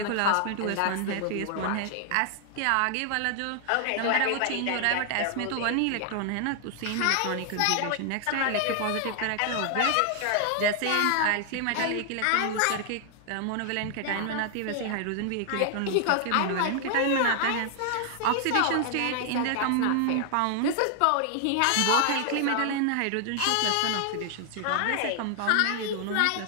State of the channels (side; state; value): both; different; correlation 0.00